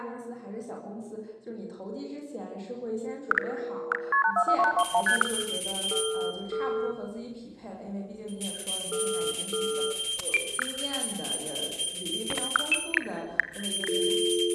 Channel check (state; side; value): identical; both; correlation 1.00